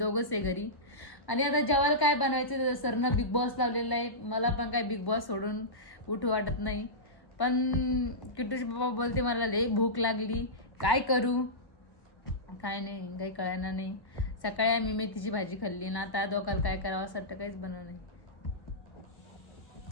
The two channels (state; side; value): late; right; 1.1 ms